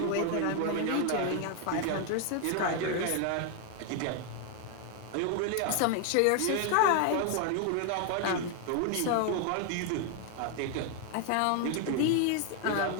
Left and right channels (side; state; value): both; different; correlation 0.01